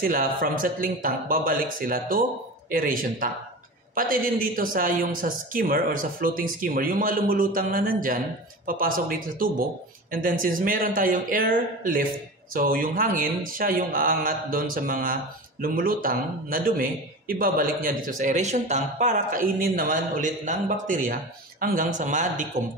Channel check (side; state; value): both; normal; correlation 0.30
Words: from settling tank, babalik sila to aeration tank. Pati din dito sa skimmer or sa floating skimmer, yung mga lumulutang na nandyan, papasok dito sa tubo. And then since meron tayong air lift, so yung hangin, siya yung aangat doon sa mga lumulutang na dumi, ibabalik niya dito sa aeration tank para kainin naman ulit ng bakterya hanggang sa